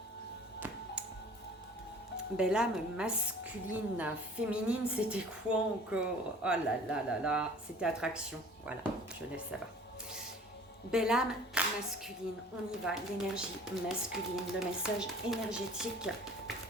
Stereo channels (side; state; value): both; normal; correlation 0.48